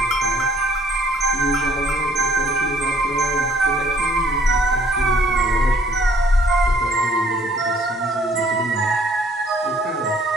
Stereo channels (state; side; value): normal; both; correlation 0.60